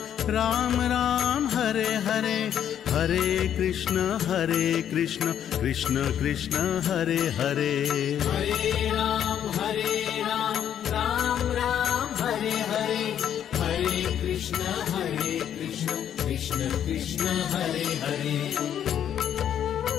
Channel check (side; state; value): right; quieter; 9.7 dB